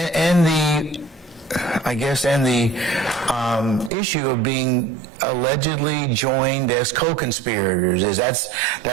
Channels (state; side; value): drops out; left; at 3.9 s